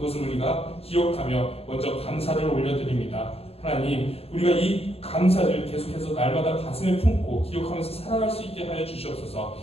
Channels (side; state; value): right; late; 0.29 ms